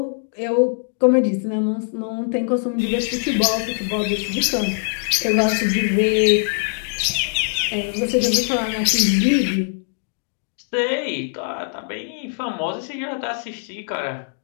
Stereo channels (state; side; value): silent; right; digital silence